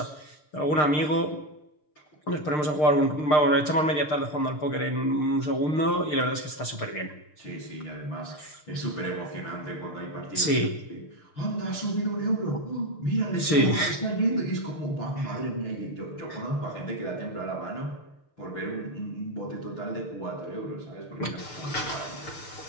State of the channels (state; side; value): late; right; 6.7 ms